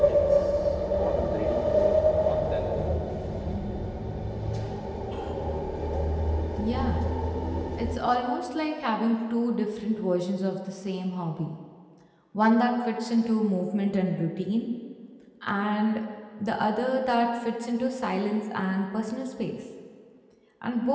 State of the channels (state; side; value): identical; both; correlation 1.00